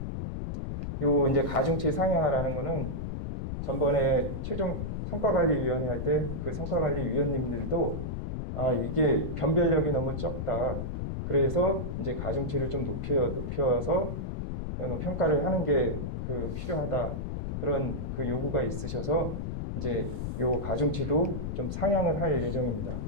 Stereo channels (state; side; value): noise; left; rumble, 4 dB below the sound